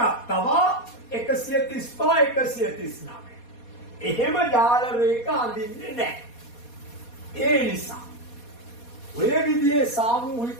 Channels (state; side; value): late; right; 4.2 ms